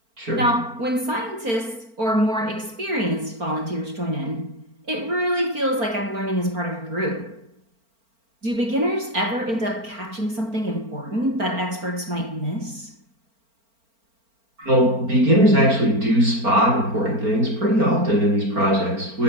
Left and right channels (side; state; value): left; late; 4.4 ms